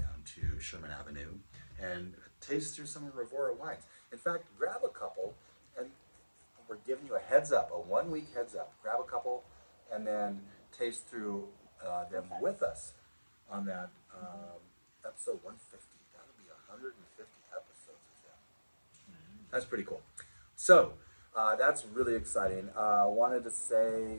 to Sherman Avenue and taste through some of Rivora wines. In fact, grab a couple, and we're giving you a heads up, a 1 week heads up. Grab a couple and then taste through them with us on that episode 150. That'll be 150 episodes of them. That's pretty cool. So that's really exciting. Wanted to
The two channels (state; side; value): inverted; both; correlation -1.00